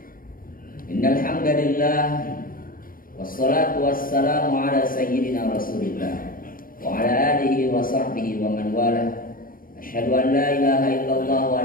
Innal hamdalillah wassalatu wassalamu ala sayyidina Rasulillah wa ala alihi wa sahbihi wa man wala. Asyhadu an la ilaha illallah wa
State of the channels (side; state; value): right; late; 0.41 ms